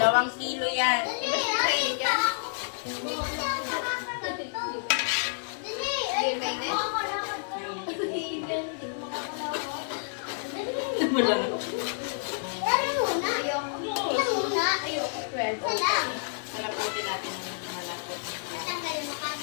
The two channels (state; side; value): silent; right; digital silence